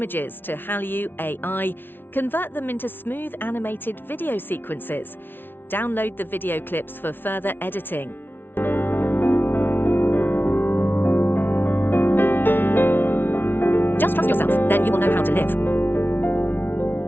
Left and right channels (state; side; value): late; right; 0.10 ms